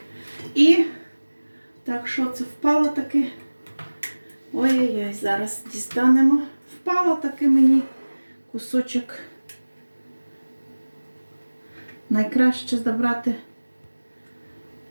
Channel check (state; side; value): inverted; both; correlation -1.00